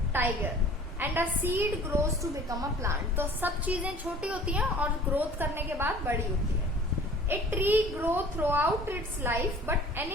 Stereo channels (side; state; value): both; normal; correlation 0.47